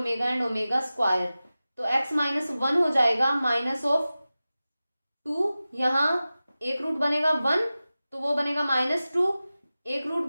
एंड ओमेगा स्क्वायर, तो x minus 1 हो जाएगा -2, यहां एक रूट बनेगा 1 तो वो बनेगा -2, एक रूट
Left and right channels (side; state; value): both; inverted; correlation -0.95